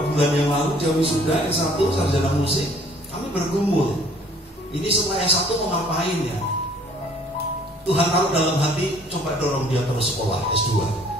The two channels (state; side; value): normal; both; correlation 0.56